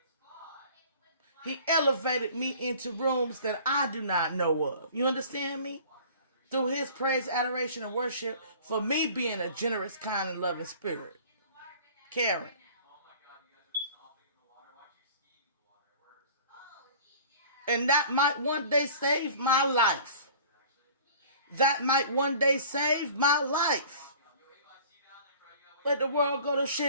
He elevated me into rooms that I do not know of. You understand me? Through his praise, adoration, and worship for me being a generous, kind, and loving spirit. Caring. And that might one day save my life. that might one day save my life. Let the world go to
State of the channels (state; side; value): inverted; both; correlation -0.46